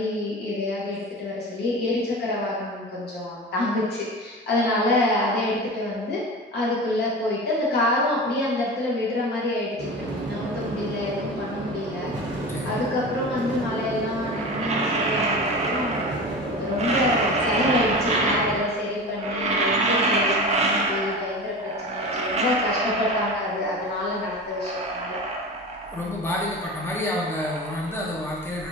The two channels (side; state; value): both; normal; correlation 0.31